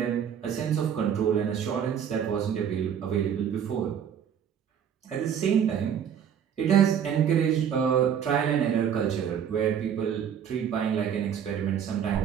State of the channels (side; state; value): left; quieter; 8.5 dB